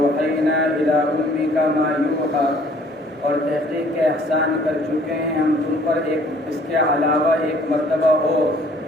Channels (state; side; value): normal; both; correlation 0.57